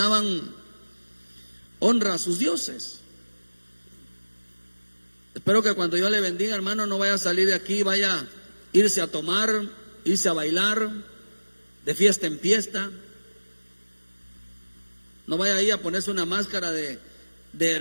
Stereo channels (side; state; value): both; inverted; correlation -1.00